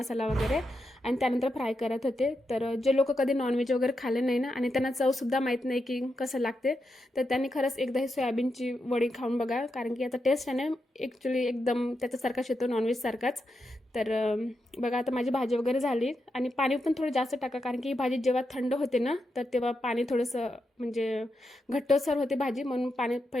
वगैरे. आणि त्यानंतर फ्राय करत होते. तर जे लोक कधी नॉनव्हेज वगैरे खाल्ले नाही ना, आणि त्यांना चवसुद्धा माहीत नाही की कसं लागते, तर त्यांनी खरंच एकदा ही सोयाबीनची वडी खाऊन बघा. कारण की आता टेस्ट आहे ना ॲक्च्युली एकदम त्याच्यासारखाच येतो, नॉनव्हेजसारखाच. तर बघा आता माझी भाजी वगैरे झाली. आणि पाणी पण थोडं जास्त टाका, कारण की ही भाजी जेव्हा थंड होते ना, तर तेव्हा पाणी थोडंसं म्हणजे घट्टसर होते भाजी, म्हणून पाणी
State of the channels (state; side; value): normal; both; correlation 0.86